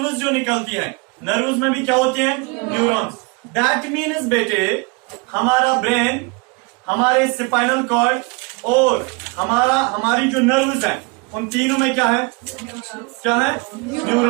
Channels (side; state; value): left; quieter; 28.9 dB